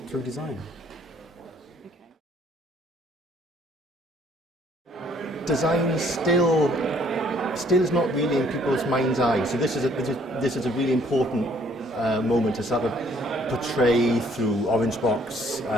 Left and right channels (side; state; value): both; normal; correlation 0.62